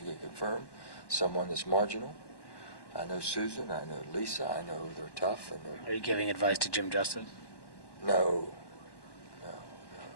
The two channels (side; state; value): right; late; 1.1 ms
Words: confirm someone that's marginal. I know Susan, I know Lisa, I know they're tough. Are you giving advice to Jim Justice? No.